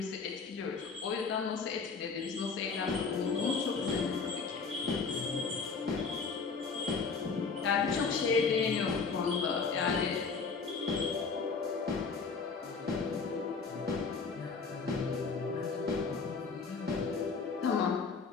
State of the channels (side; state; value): right; quieter; 4.9 dB